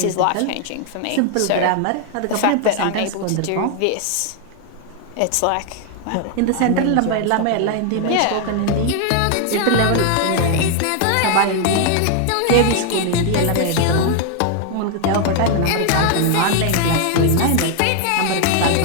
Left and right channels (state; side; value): different; both; correlation 0.00